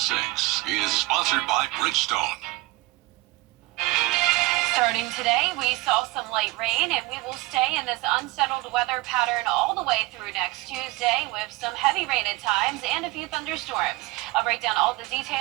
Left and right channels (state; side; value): quieter; left; 21.0 dB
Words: is sponsored by Bridgestone. Starting today, we saw some light rain, and we will stay in this unsettled weather pattern all the way through next Tuesday with some heavy rain at times and a few thunderstorms. I'll break down all the